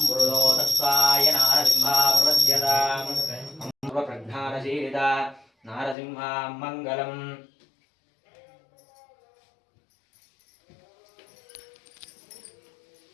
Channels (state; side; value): drops out; right; at 6.0 s